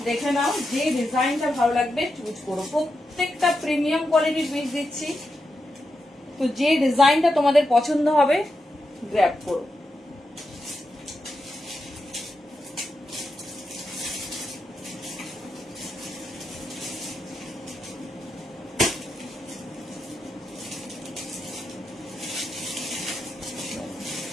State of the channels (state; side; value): normal; both; correlation 0.87